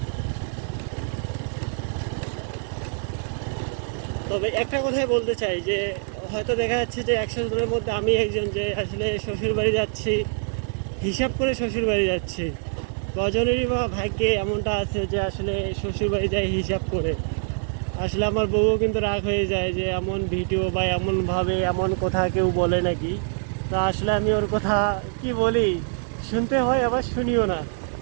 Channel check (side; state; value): left; silent; 62 dB below the other